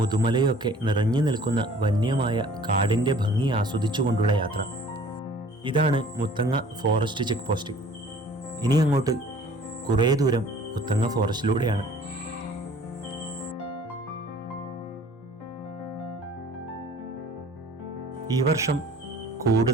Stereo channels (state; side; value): normal; both; correlation 0.51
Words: ഒക്കെ നിറഞ്ഞു നിൽക്കുന്ന വന്യമായ കാടിൻ്റെ ഭംഗി ആസ്വദിച്ചുകൊണ്ടുള്ള യാത്ര. ഇതാണ് മുത്തങ്ങ ഫോറസ്റ്റ് ചെക്ക് പോസ്റ്റ്. ഇനി അങ്ങോട്ട് കുറേ ദൂരം മുത്തങ്ങ ഫോറസ്റ്റിലൂടെയാണ്. ഈ വർഷം